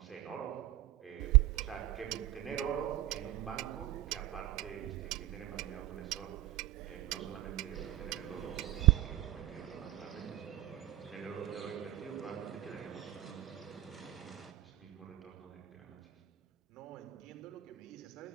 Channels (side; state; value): left; quieter; 15.4 dB